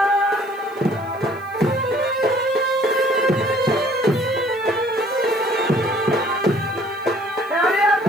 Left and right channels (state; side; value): noise; left; hiss, 28 dB below the sound